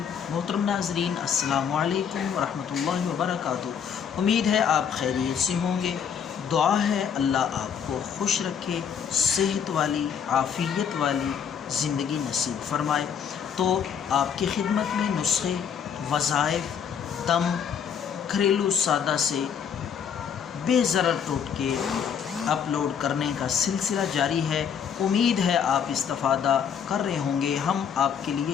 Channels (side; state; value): right; quieter; 7.6 dB